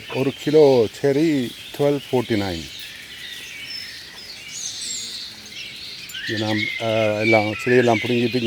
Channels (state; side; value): identical; both; correlation 1.00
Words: ஒரு கிலோ செரி 12.49. இது நாம் எல்லாம் செடியெல்லாம் பிடுங்கிட்டு